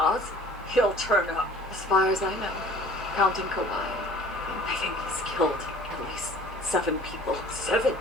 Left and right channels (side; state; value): both; normal; correlation 0.48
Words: he'll turn up. As far as I know, counting Kawhi, I think he's killed at least 7 people. 7?